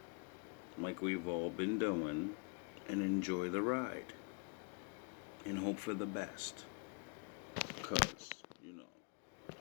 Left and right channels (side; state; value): right; quieter; 38.6 dB